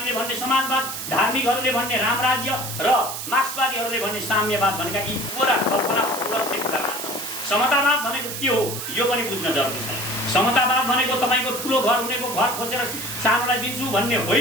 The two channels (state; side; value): noise; right; hiss, 6 dB below the sound